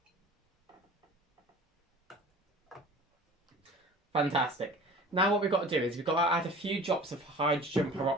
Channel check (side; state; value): both; normal; correlation 0.43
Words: Fantastic. Now what we've got to do is we've got to add a few drops of hydrogen